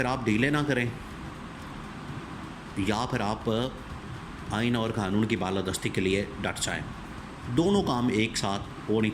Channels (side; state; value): both; identical; correlation 1.00